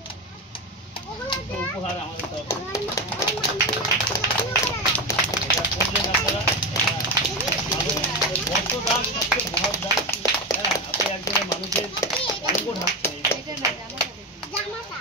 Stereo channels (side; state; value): both; normal; correlation 0.17